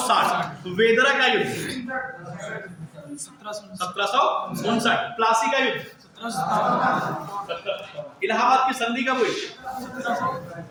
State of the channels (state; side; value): identical; both; correlation 1.00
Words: वेदरा का युद्ध 1759। प्लासी का युद्ध 1757, इलाहाबाद की संधि कब हुई?